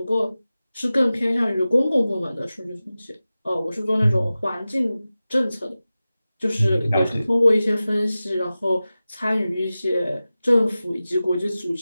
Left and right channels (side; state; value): both; inverted; correlation -0.96